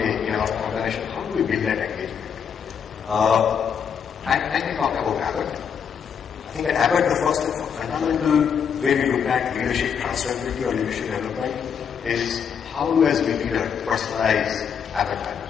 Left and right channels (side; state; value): right; quieter; 7.4 dB